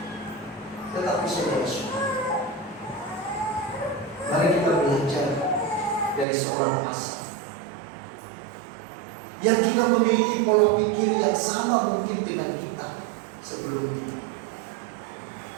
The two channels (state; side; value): drops out; left; at 6.2 s